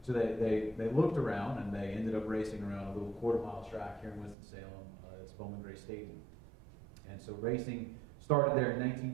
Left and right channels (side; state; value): left; drops out; at 4.4 s